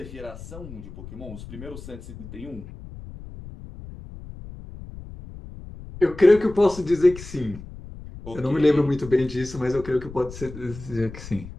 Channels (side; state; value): left; noise; rumble, 14 dB below the sound